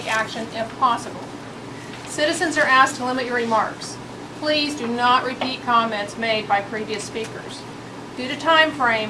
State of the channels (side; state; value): both; identical; correlation 1.00